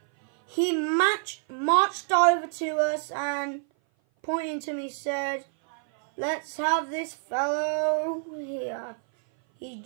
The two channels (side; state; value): left; silent; 57 dB below the other